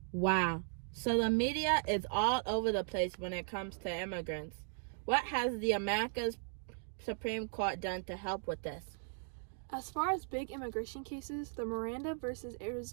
Wow. So the media is all over the place when it comes to immigrants. What has the America's Supreme Court done to help with this? As far as big immigration cases, the Miranda versus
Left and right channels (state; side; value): silent; left; 53 dB below the other